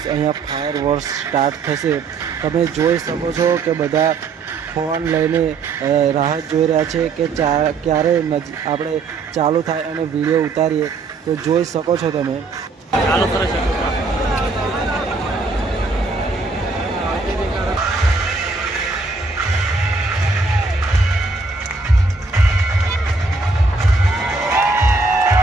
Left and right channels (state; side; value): quieter; left; 4.0 dB